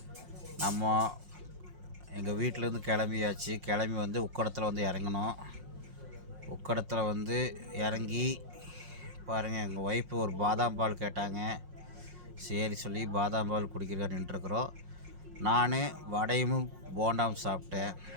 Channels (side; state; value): left; late; 5.6 ms